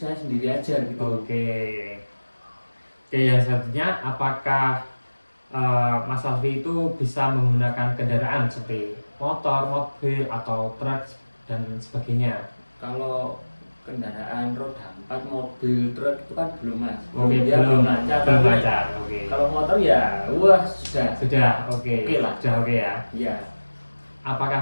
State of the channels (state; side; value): inverted; both; correlation -1.00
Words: sendiri aja gitu. Oke, yang selanjutnya, apakah Mas Alfi itu bisa menggunakan kendaraan seperti motor, mobil, atau truk dan sebagainya? Kalau kendaraan roda 4, mobil, truk itu kan belum Mas. Oke, belum lancar. Oke. Kalau motor ya sudah. Oke lah. Sudah oke ya. Iya.